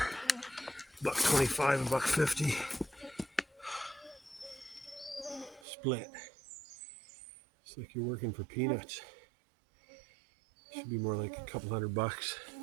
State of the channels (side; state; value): left; drops out; at 5.7 s